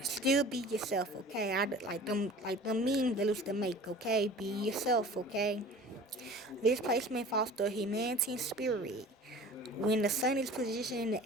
Still be yourself, okay? Like them memes they used to make, okay? Be yourself, okay? This placement fosters humanity and spirit. When the sun is positioned in the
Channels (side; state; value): both; normal; correlation 0.43